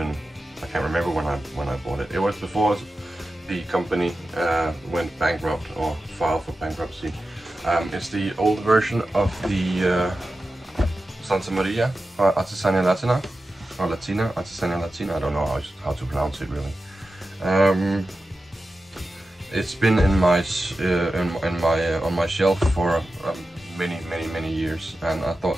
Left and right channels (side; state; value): both; normal; correlation 0.93